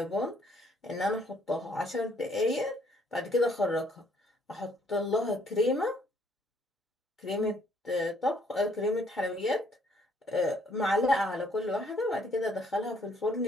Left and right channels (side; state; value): both; normal; correlation 0.65